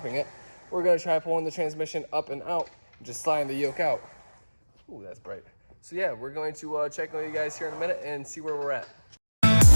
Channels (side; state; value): both; inverted; correlation -1.00